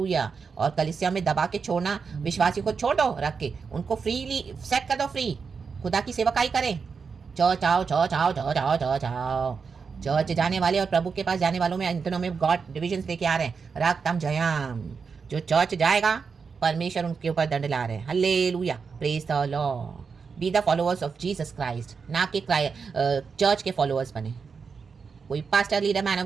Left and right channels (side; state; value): left; quieter; 5.5 dB